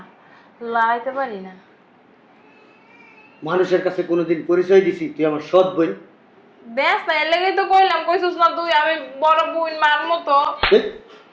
লড়াইতে পারি না। মানুষের কাছে কোনোদিন পরিচয় দিছি তুই আমার সৎ বোন? দেখ না, এর লেগেই তো কইলাম, কইছিস না তুই আমি বড় বোন মার মতো।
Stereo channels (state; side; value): identical; both; correlation 1.00